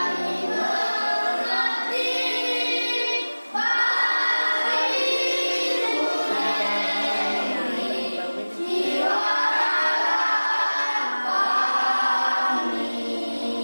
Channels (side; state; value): both; inverted; correlation -1.00